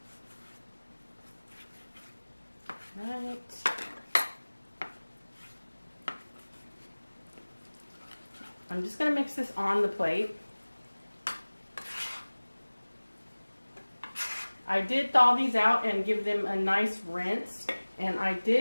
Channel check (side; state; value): both; inverted; correlation -1.00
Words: Right. I'm just going to mix this on the plate. I did thaw these out and give them a nice rinse, and I